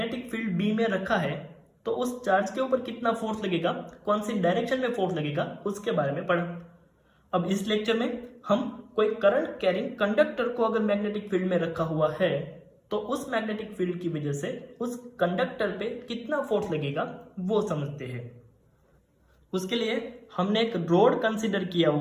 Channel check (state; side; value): identical; both; correlation 1.00